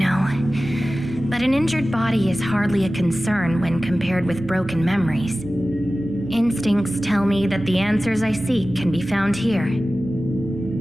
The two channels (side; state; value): right; noise; rumble, 22 dB below the sound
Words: But an injured body is hardly a concern when compared with broken memories. Instincts tell me that the answers I seek can be found here.